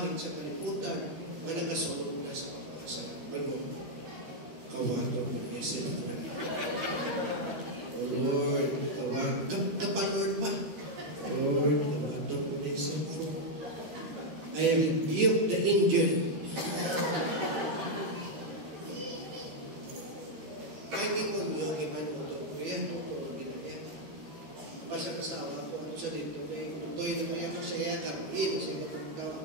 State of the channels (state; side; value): late; left; 13 ms